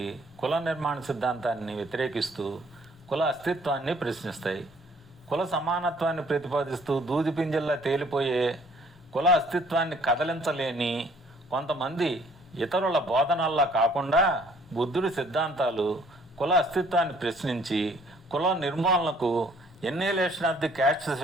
కుల నిర్మాణ సిద్ధాంతాన్ని వ్యతిరేకిస్తూ కుల అస్తిత్వాన్ని ప్రశ్నిస్తాయి. కుల సమానత్వాన్ని ప్రతిపాదిస్తూ దూది పింజల్లా తేలిపోయే కుల అస్తిత్వాన్ని కదలించలేని కొంతమంది ఇతరుల బోధనల్లా కాకుండా బుద్ధుడి సిద్ధాంతాలు కుల అస్తిత్వాన్ని ప్రశ్నించి కుల నిర్మూలనకు ఎన్నేలేషన్ ఆఫ్ ది క్యాస్ట్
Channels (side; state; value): both; normal; correlation 0.59